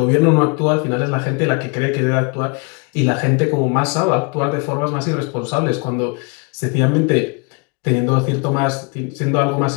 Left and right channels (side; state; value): right; quieter; 32.8 dB